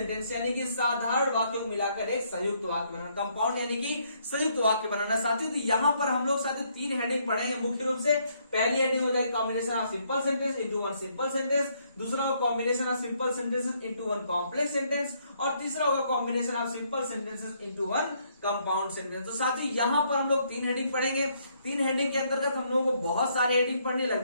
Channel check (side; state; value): both; inverted; correlation -0.71